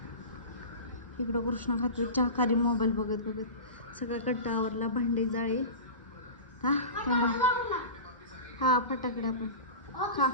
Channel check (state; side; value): inverted; both; correlation -0.31